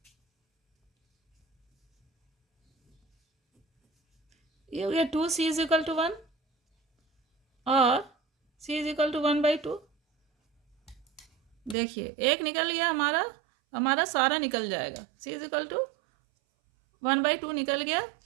ये हो गया 2c = 1 और c = 1/2। देखिए एक निकल गया हमारा, हमारा सारा निकल जाएगा, c = 1/2 निकल गया।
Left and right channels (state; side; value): drops out; left; at 11.8 s